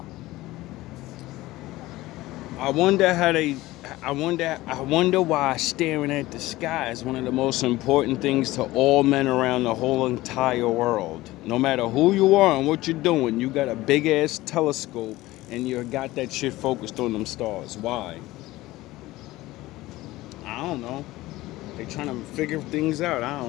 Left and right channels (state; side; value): quieter; right; 18.0 dB